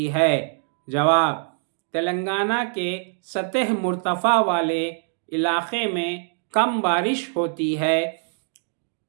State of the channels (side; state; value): left; silent; 63 dB below the other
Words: ہے؟ جواب، تلنگانہ کے سطح مرتفع والے علاقے میں کم بارش ہوتی ہے